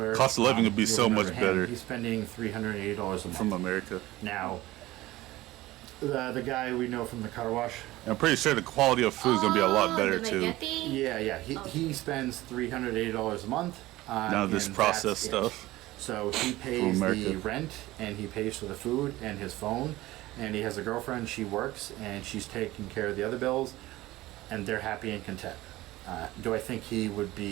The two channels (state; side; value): quieter; left; 17.6 dB